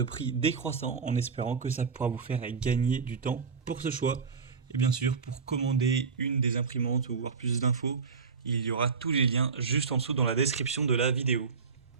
prix décroissant en espérant que ça pourra vous faire gagner du temps pour ce choix. Et bien sûr, pour commander une des imprimantes ou voir plus d'infos, il y aura tous les liens juste en dessous dans la description de la vidéo.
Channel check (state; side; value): quieter; left; 5.3 dB